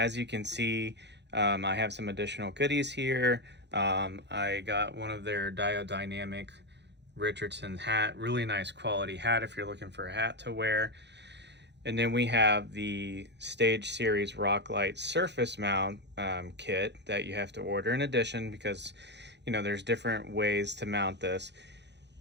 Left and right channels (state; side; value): late; left; 0.50 ms